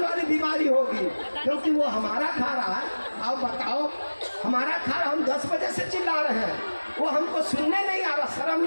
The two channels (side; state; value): both; inverted; correlation -1.00